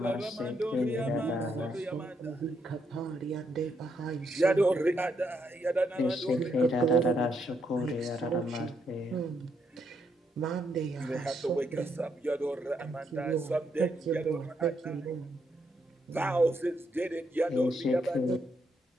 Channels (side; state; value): both; normal; correlation 0.77